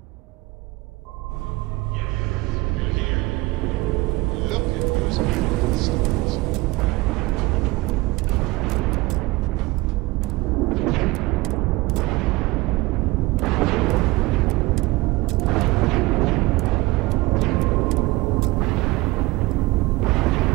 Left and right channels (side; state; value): left; quieter; 21.1 dB